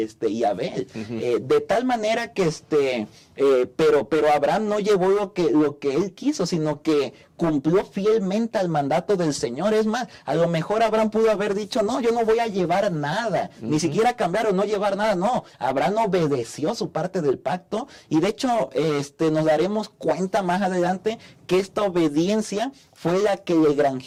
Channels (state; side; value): identical; both; correlation 1.00